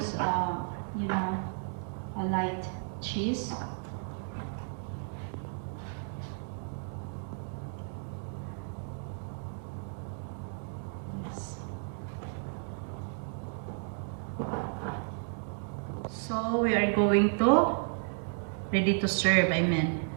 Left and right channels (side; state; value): left; silent; 56 dB below the other